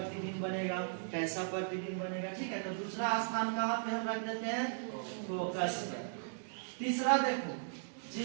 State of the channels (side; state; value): left; silent; digital silence